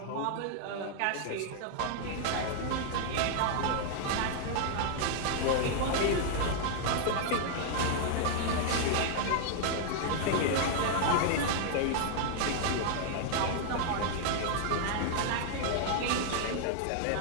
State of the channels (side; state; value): both; different; correlation 0.00